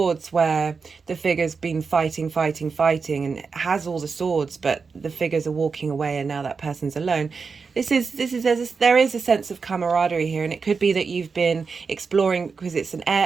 where the figure's been fighting and has all the swords, but the figures are walking away and now that person's alone. There is a sense of camaraderie here, and it could be that you've been exploring, because it's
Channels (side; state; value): left; quieter; 5.1 dB